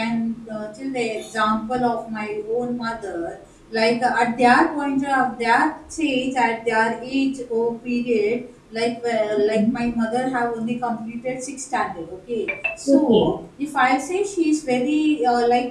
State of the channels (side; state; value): both; identical; correlation 1.00